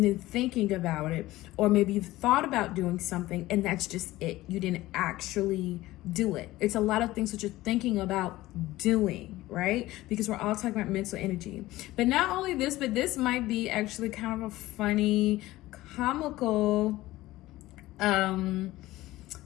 then thinking about it. Or maybe you've thought about doing something and that's just it. You didn't actually do it. It's a lot of things that you're thinking about doing, right? Because we're all talking about mental energy. But not only this, but this might be actually kind of a funny, comical,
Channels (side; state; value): right; quieter; 17.3 dB